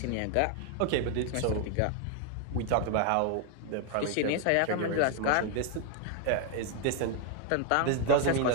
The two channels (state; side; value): different; both; correlation 0.00